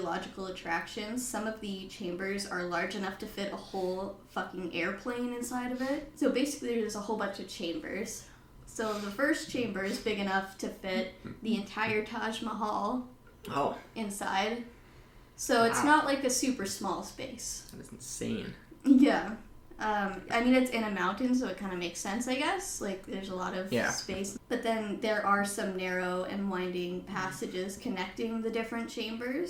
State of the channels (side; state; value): both; identical; correlation 1.00